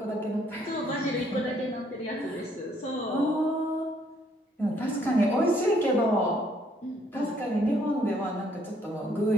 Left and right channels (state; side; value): normal; both; correlation 0.67